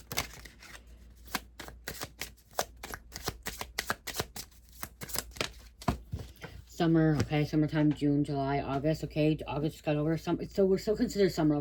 Summer, okay, summertime, June, July, August, okay, August just got over. So we're still considered summer,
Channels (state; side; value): identical; both; correlation 1.00